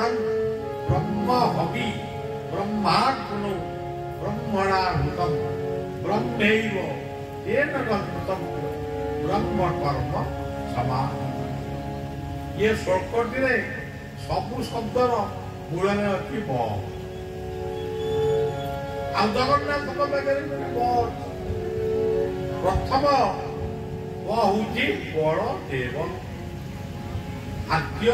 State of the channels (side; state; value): both; identical; correlation 1.00